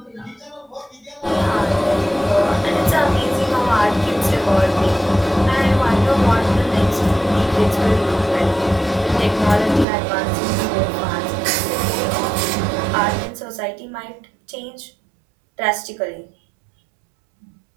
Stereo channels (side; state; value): left; drops out; at 9.9 s